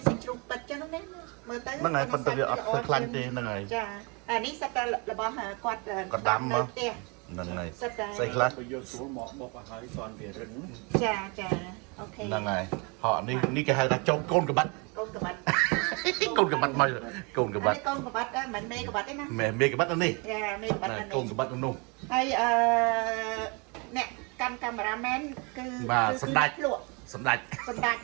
ចជាជ្រូកទឹកចឹងណាមើលទៅ ហ្នឹងហើយប៉ុន្តែវាអត់សូវខ្លាញ់ទេហ្នឹងហើយ ចាអានេះសិតតែរបស់គាត់ដាំមកហ្នឹងហើយស្អីខ្លះ យកស្រួលមកបុកឲ្យហើយស្វាន់វារឹង ចាអូខេ ហ្នឹងហើយហ៎នេះគេហៅថាចោមកូនកបាត់ កូនកបាត់ កូនកបាត់មកកូនកបាត់ កូនកបាត់មិនមេកបាត់ទេណា មេកបាត់នេះ ចាមេកបាត់នេះ កូនកបាត់នោះ ហើយអ្នកកាន់កាមេរ៉ាមែនគឺ បាទសម្ដេចព្រោ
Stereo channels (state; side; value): quieter; left; 31.0 dB